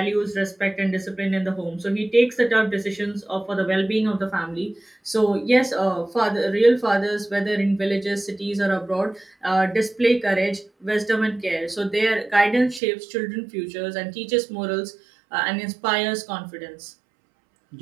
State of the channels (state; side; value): drops out; left; at 12.8 s